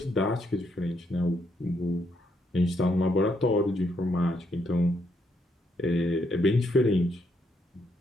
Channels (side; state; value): both; normal; correlation 0.75